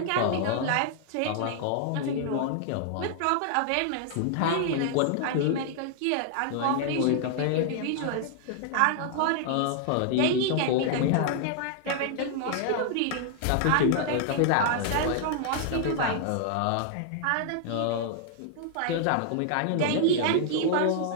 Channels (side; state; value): both; different; correlation -0.01